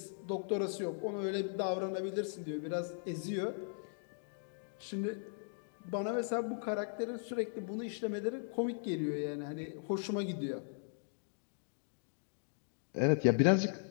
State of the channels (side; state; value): right; silent; digital silence